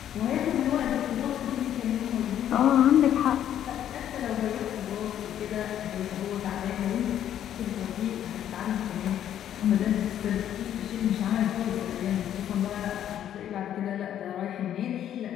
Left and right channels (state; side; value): quieter; right; 10.6 dB